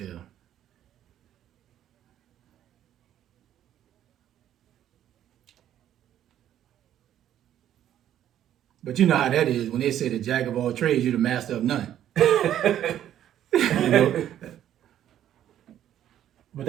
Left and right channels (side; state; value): left; quieter; 11.2 dB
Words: But you know how that is when they say the jack of all trades, you're the master of none. You know? But